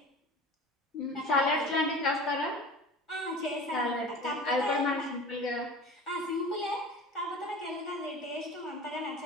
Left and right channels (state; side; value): normal; both; correlation 0.37